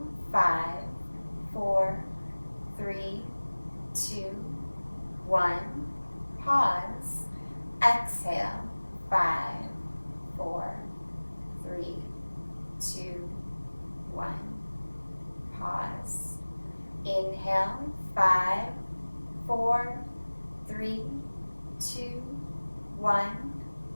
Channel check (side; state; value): both; inverted; correlation -1.00